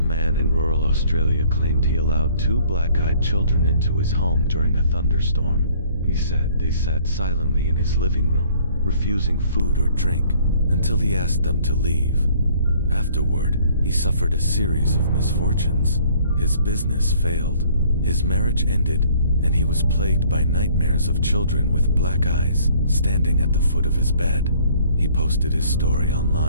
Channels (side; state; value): both; inverted; correlation -0.58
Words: man in rural Australia claimed he allowed two black-eyed children into his home during a thunderstorm. He said they sat silently in his living room, refusing food or drink, until he asked them to leave. Afterward, he suffered a series of misfortunes. His business failed, his marriage ended, and he was plagued by nightmares of children with black eyes standing at the foot of his bed. He posted his story